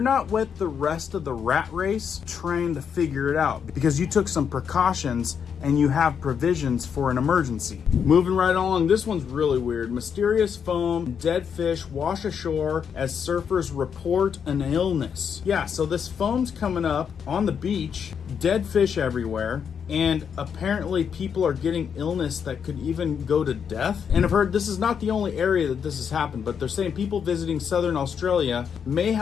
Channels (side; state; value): right; quieter; 7.2 dB